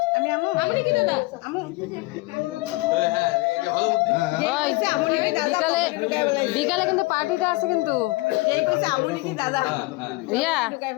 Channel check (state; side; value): quieter; right; 23.1 dB